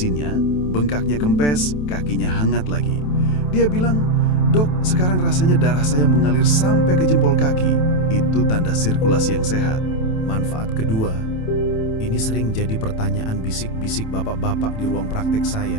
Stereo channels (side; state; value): right; late; 27 ms